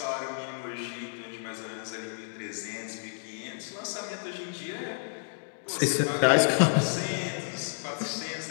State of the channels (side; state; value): right; silent; digital silence